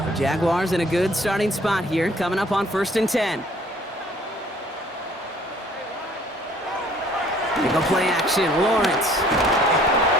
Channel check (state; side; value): normal; both; correlation 0.57